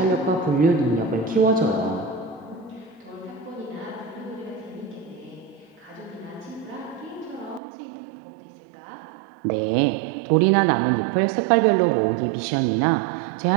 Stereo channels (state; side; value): drops out; left; at 7.6 s